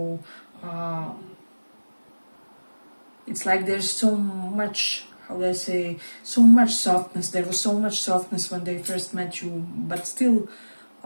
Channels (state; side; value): inverted; both; correlation -1.00